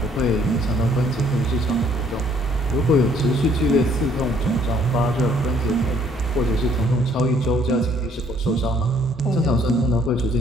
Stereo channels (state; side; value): normal; both; correlation 0.63